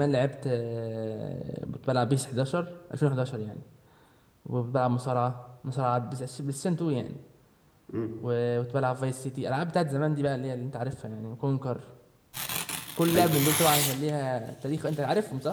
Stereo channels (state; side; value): identical; both; correlation 1.00